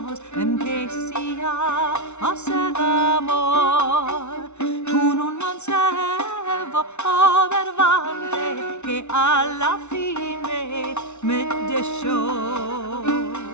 empecé a hacer amor con un mancebo verbante que a la fin me dejó.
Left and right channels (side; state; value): right; late; 0.82 ms